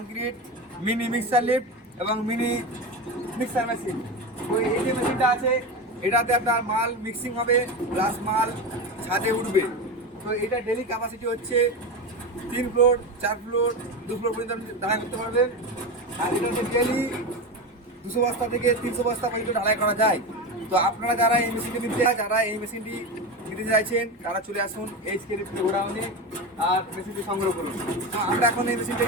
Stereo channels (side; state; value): both; normal; correlation 0.21